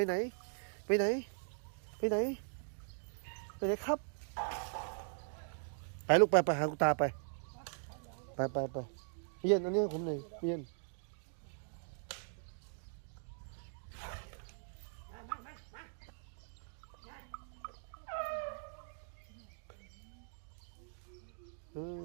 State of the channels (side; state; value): left; silent; digital silence